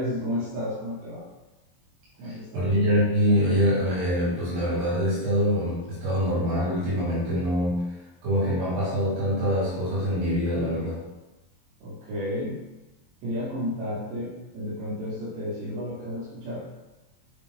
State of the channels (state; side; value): late; left; 23 ms